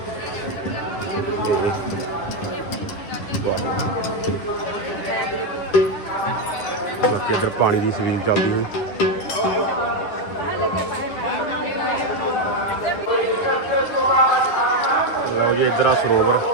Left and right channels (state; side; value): late; right; 10 ms